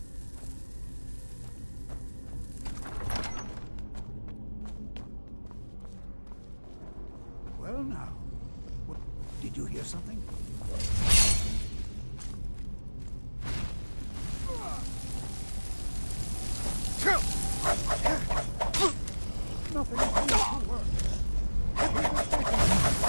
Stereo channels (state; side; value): inverted; both; correlation -1.00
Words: Well now, did you hear something? Nothing seems to work.